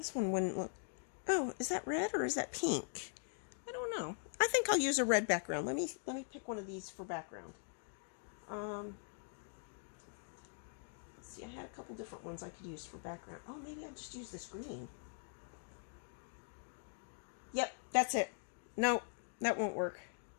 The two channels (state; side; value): silent; right; digital silence